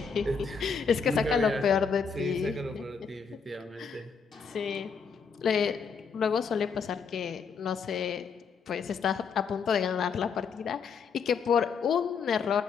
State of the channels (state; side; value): quieter; right; 5.8 dB